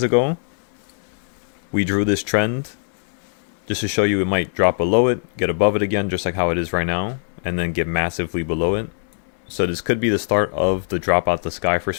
ago, we drew this trend just to show you it might drop below it, get above it again, just like how it is right now, and then get massively below it. So this could be the start of the drop out the sky for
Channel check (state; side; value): silent; right; digital silence